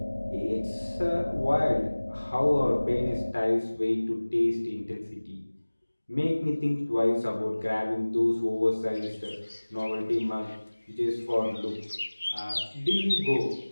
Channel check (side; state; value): both; inverted; correlation -1.00